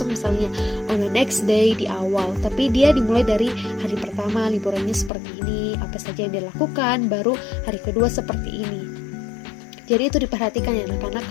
misalnya on the next day di awal, tapi dia dimulai dari hari pertama liburannya seperti ini, apa saja yang dia lakukan, baru hari kedua seperti ini. Jadi itu diperhatikan ya, karena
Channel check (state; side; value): drops out; right; at 5.1 s